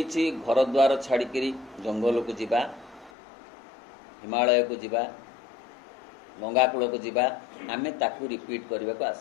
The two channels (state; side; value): drops out; right; at 3.1 s